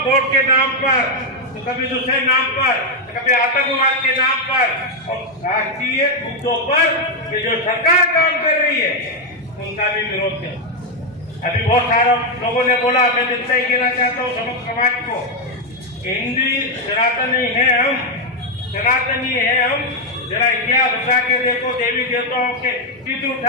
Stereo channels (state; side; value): normal; both; correlation 0.02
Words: के नाम पर, तो कभी दूसरे नाम पर, तो कभी आतंकवाद के नाम पर, और राष्ट्रीय मुद्दों पर ये जो सरकार काम कर रही है उनका भी विरोध है। अभी बहुत सारे लोगों ने बोला, मैं जितना ही कहना चाहता हूँ समस्त समाज को, हिंदू सनातनी है हम, सनातनी है हम। जरा इतिहास उठा के देखो, देवी देवताओं के चित्र